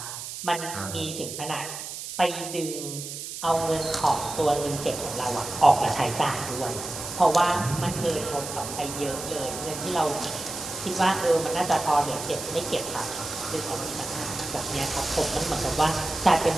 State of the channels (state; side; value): noise; right; hiss, 8 dB below the sound